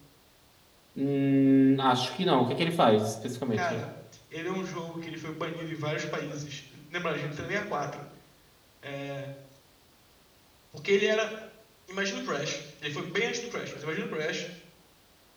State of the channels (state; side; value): identical; both; correlation 1.00